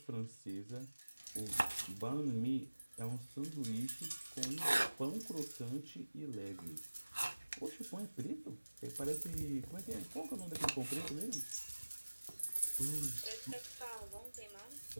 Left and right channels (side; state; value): both; inverted; correlation -1.00